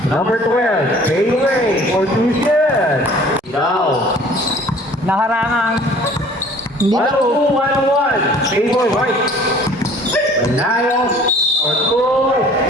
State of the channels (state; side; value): normal; both; correlation 0.51